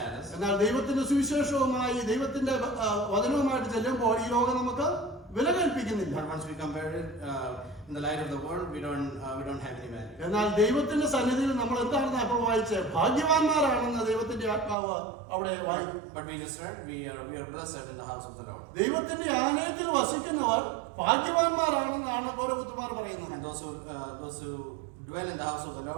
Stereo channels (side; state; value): left; drops out; at 14.8 s